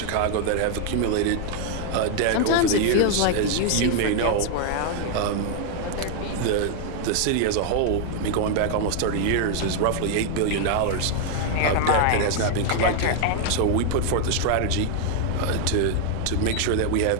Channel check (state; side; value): different; both; correlation 0.00